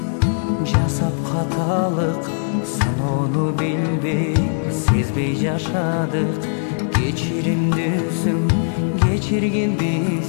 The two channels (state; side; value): silent; right; 66 dB below the other